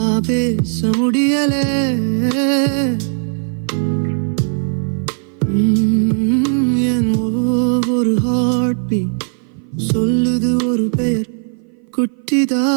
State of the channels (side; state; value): left; silent; 58 dB below the other